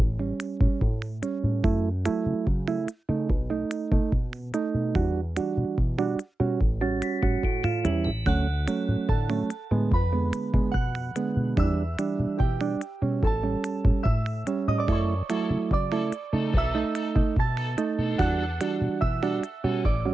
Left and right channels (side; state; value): both; normal; correlation 0.94